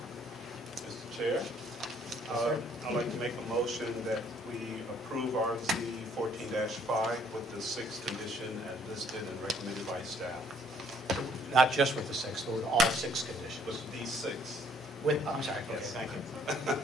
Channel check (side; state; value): both; normal; correlation 0.63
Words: Mr. Chair, I'd like to make a motion that we approve RZ 14-5 with the 6th condition as listed and recommended by staff. Not just with the 6, but with all 6 conditions. With these 6. I'm sorry. Okay, Yes. thank you.